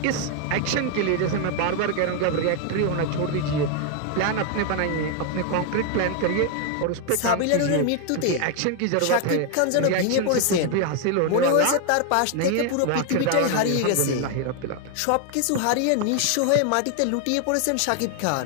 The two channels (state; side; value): different; both; correlation 0.00